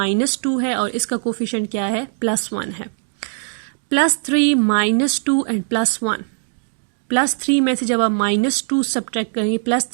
है और इसका कोफिशिएंट क्या है, +1 है। +3 -2 एंड +1, +3 में से जब आप -2 सब्ट्रैक्ट करेंगे,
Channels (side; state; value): left; silent; digital silence